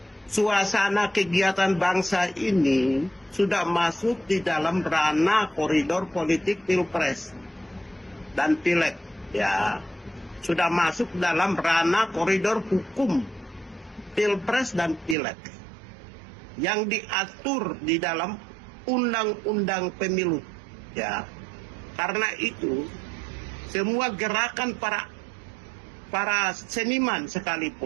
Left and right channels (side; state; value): left; drops out; at 15.2 s